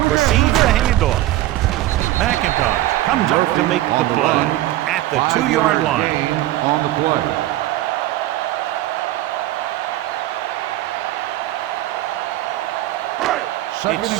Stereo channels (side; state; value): left; quieter; 15.5 dB